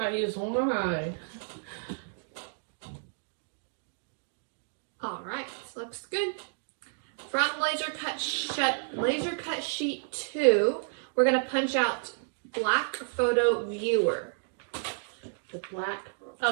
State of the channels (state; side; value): silent; left; digital silence